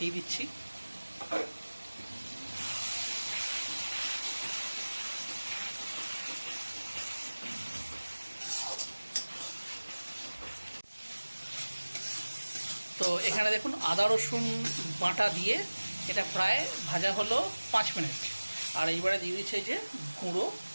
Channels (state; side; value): inverted; both; correlation -1.00